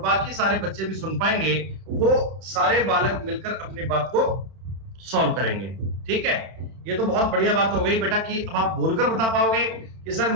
सारे बच्चे भी सुन पाएंगे। वो सारे बालक मिलकर अपनी बात को सॉल्व करेंगे। ठीक है, ये तो बहुत बढ़िया बात हो गई बेटा कि अब आप बोलकर बता पाओगे कि सर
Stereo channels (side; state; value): left; late; 31 ms